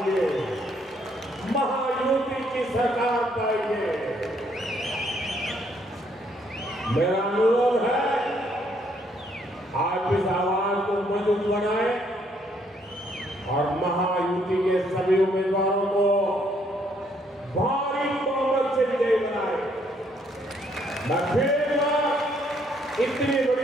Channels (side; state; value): both; normal; correlation 0.69